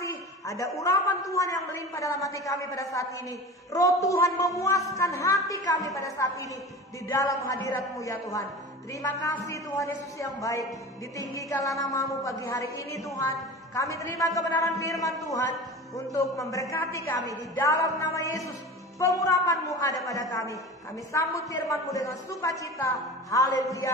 ada urapan Tuhan yang melimpah dalam hati kami pada saat ini. Roh Tuhan memuaskan hati kami pada saat ini di dalam hadirat-Mu ya Tuhan. Terima kasih Tuhan Yesus yang baik. Ditinggikanlah nama-Mu pagi hari ini Tuhan. Kami terima kebenaran firman Tuhan untuk memberkati kami di dalam nama Yesus. Pengurapan-Mu ada pada kami. Kami sambut firman-Mu dengan sukacita.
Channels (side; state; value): both; normal; correlation 0.34